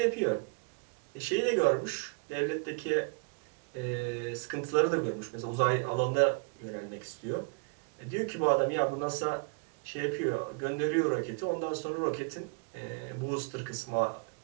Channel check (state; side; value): quieter; left; 33.9 dB